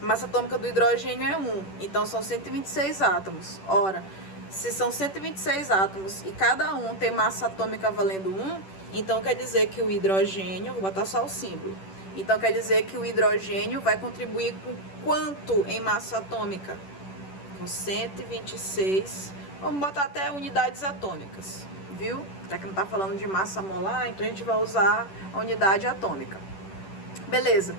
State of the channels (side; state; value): right; late; 10 ms